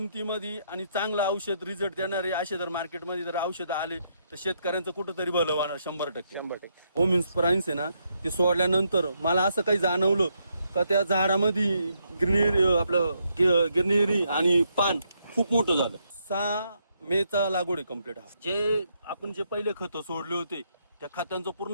आणि चांगलं औषध रिझल्ट देणारे असे जर मार्केटमध्ये जर औषधं आले तर शेतकऱ्यांचं कुठंतरी भलं होणार 100%. होम इन्स्प्राइन्स आहे ना, ते सोडल्यानंतर मला असं काही जाणवलं का त्या झाडामध्ये गिरनिरी आणि पान खूप मोठं झालं. 6 मेचा लागवड आहे कम्प्लीट. जे आपण पहिले खतं सोडले होते त्या खतांचं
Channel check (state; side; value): inverted; both; correlation -0.77